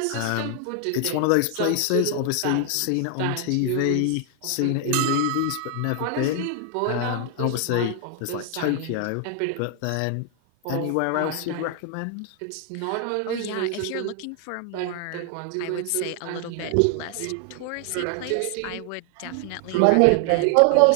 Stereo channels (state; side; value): different; both; correlation 0.00